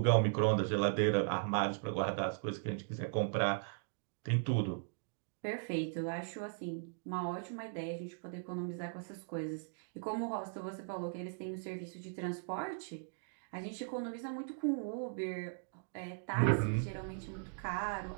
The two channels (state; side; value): silent; left; digital silence